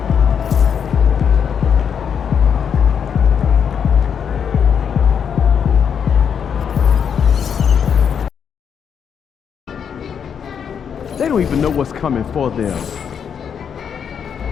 They don't even know what's coming for them.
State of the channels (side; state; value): right; quieter; 7.5 dB